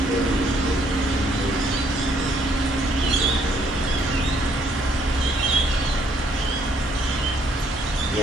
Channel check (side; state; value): both; normal; correlation 0.67